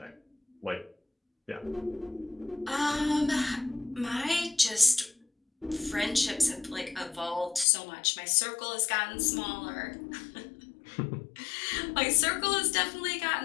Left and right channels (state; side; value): drops out; right; at 7.7 s